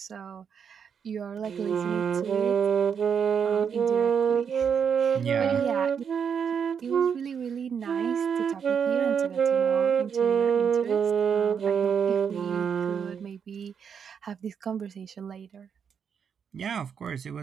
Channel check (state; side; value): quieter; left; 7.1 dB